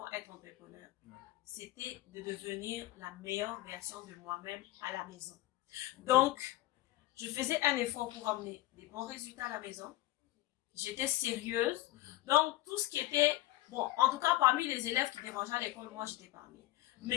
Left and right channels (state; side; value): quieter; right; 17.1 dB